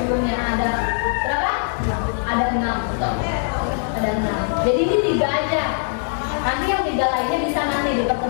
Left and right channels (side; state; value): right; silent; digital silence